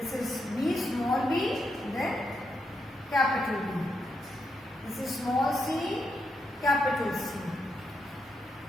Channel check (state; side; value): normal; both; correlation 0.82